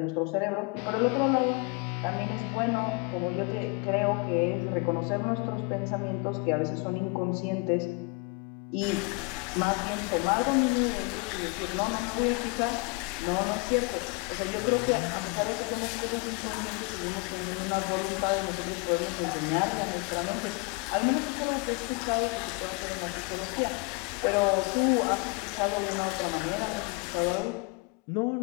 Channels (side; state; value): right; quieter; 29.1 dB